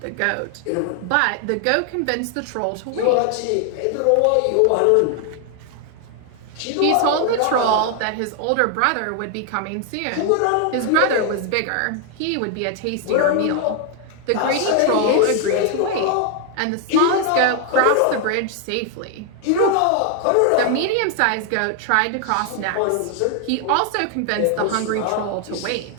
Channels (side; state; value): both; different; correlation 0.00